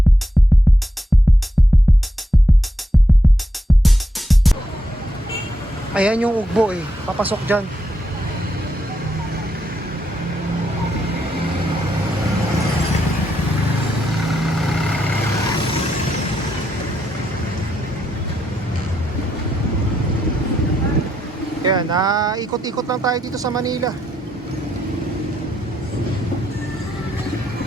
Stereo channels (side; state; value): both; normal; correlation 0.81